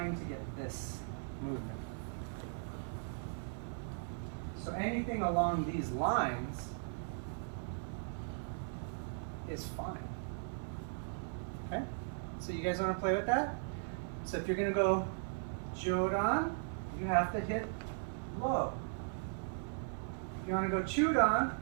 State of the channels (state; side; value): silent; left; 52 dB below the other